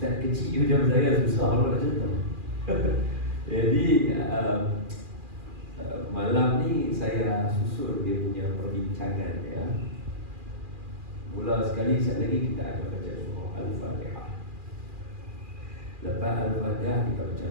kecil macam saya susah nak cerita. Jadi malam ni saya susun dia punya perbincangan ya. Mula sekali sekali lagi kita akan baca surah Al-Fatihah. Lepas Al-Fatihah kita baca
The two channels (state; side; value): late; left; 2.4 ms